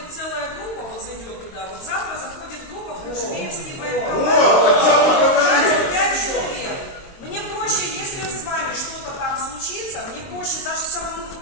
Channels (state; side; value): late; right; 22 ms